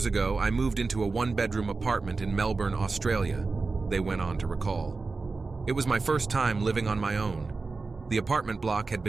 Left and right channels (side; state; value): left; quieter; 4.0 dB